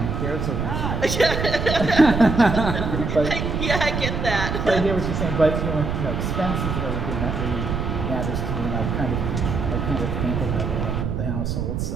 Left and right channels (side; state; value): right; noise; rumble, 2 dB below the sound